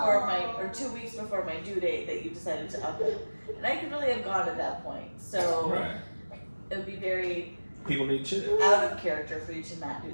weeks before my due date that you decided to up it. And I could really have gone at that point. So Right. it would be very People need chicks. out of character for you to not do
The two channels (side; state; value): both; inverted; correlation -1.00